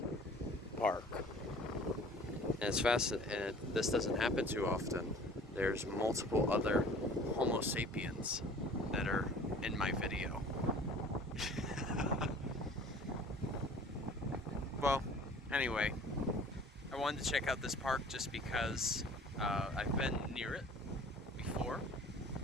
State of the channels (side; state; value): both; normal; correlation 0.48